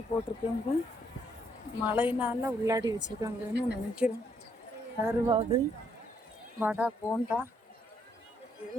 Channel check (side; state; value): both; normal; correlation 0.72